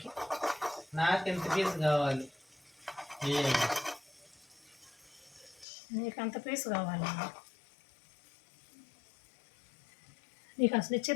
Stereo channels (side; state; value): right; drops out; at 5.7 s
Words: నాకు ఎంత పీసు కావాలి? నీకు అంత పీసు కావాలి. నీకు అసలు